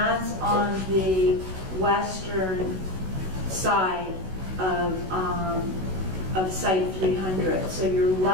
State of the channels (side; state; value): left; late; 16 ms